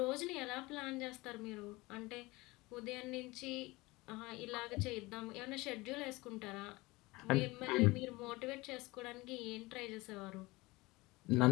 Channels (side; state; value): right; quieter; 21.9 dB